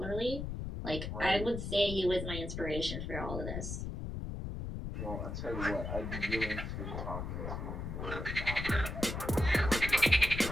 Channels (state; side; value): noise; left; rumble, 5 dB below the sound